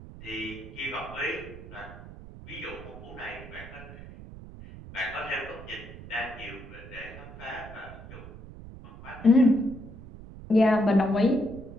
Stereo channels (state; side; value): noise; right; rumble, 15 dB below the sound